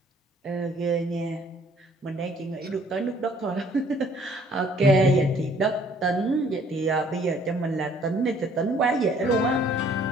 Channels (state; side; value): normal; both; correlation 0.59